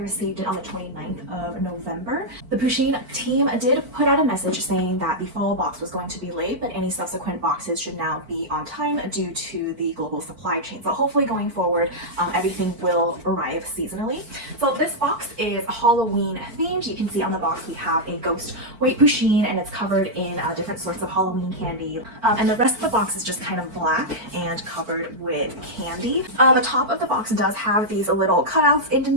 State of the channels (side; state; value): left; late; 4.5 ms